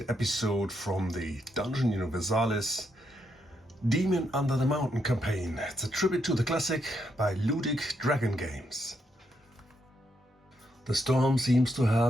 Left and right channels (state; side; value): normal; both; correlation 0.79